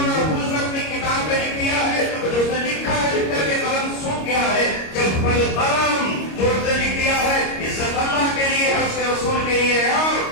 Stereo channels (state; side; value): late; right; 26 ms